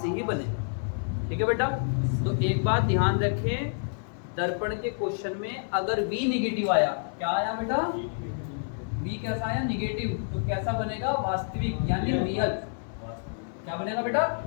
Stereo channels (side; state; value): right; silent; digital silence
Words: ही बनेगा। ठीक है बेटा, तो एक बात ध्यान रखें, दर्पण के क्वेश्चन में अगर V निगेटिव आया, क्या आया बेटा, V कैसा आया, निगेटिव, तो कैसा बनेगा, वास्तविक यानी रियल। क्या बनेगा बेटा,